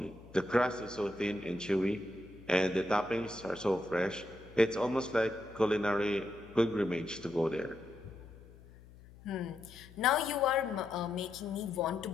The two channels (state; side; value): noise; left; hum, 21 dB below the sound